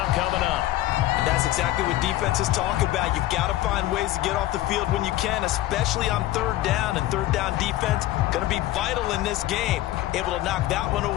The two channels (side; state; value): right; quieter; 15.4 dB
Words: coming up. And that's exactly what defenses talk about. You've got to find ways to get off the field when you can, especially on 3rd down. And 3rd down defense going to be vital in this game. Able to knock that one